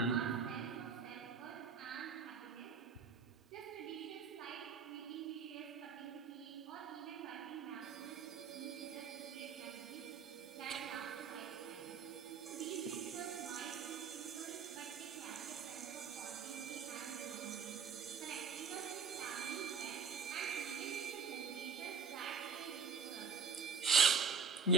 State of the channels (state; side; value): quieter; left; 5.7 dB